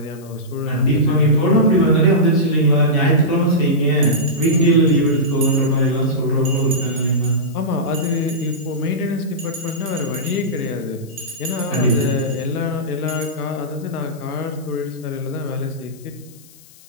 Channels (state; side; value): noise; left; hiss, 24 dB below the sound